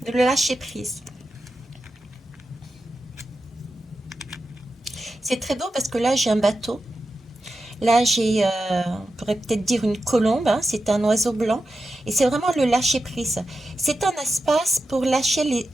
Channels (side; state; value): both; normal; correlation 0.90